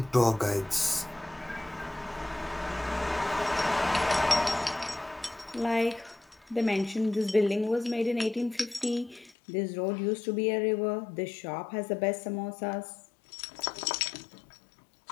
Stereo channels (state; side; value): drops out; right; at 9.3 s